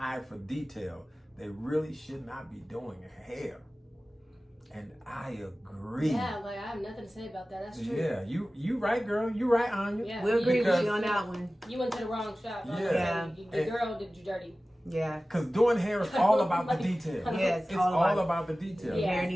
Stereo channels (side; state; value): both; normal; correlation 0.96